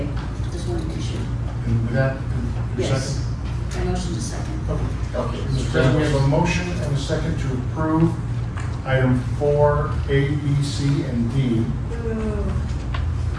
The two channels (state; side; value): identical; both; correlation 1.00